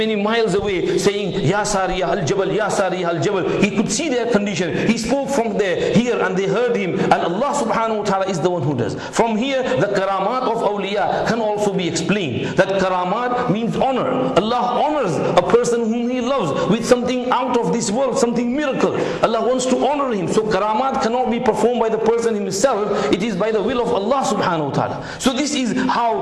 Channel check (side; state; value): both; identical; correlation 1.00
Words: miles away, saying, Ya Sariyah al-Jabal, Ya Sariyah al-Jabal. He could see their condition. He spoke from here and they heard him, and Allah subhanahu wa ta'ala is the one who does. From here, the karamat of awliya can also be explained. That karamat means honor. Allah honors a person whom He loves with something out of this world, something miracle. Allah wants to honor him. So karamat cannot be performed by the person himself. It is by the will of Allah subhanahu wa ta'ala. So this is